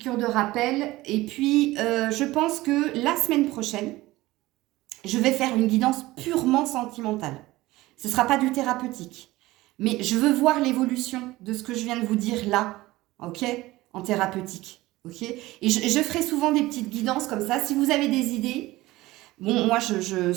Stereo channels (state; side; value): quieter; left; 18.5 dB